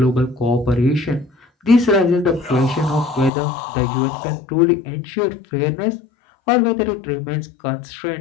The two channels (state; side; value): drops out; right; at 3.3 s